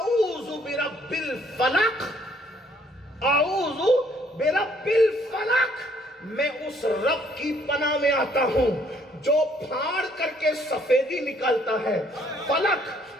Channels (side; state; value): both; normal; correlation 0.64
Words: برب الفلق, اعوذ برب الفلق, میں اس رب کی پناہ میں آتا ہوں جو پھاڑ کر کے سفیدی نکالتا ہے. فلق,